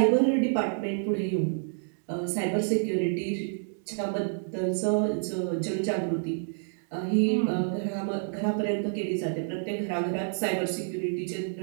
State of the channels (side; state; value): left; silent; digital silence